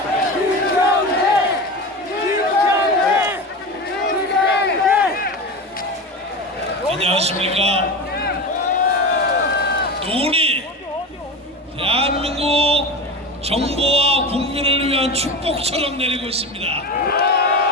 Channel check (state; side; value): normal; both; correlation 0.25